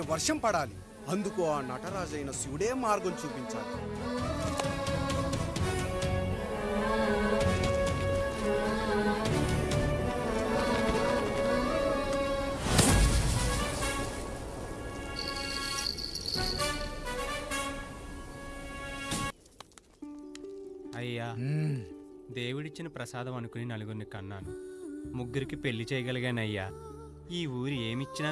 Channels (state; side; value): identical; both; correlation 1.00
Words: వర్షం పడాలి. అందుకు ఆ నటరాజైన శివుడే మార్గం చూపించాలి. అయ్యా, దేవుడిచ్చిన ప్రసాదం అనుకుని నలుగురిని కన్నాను. 3 పెళ్లి చేయగలిగానయ్యా. ఈ ఊరు ఏమిచ్చినా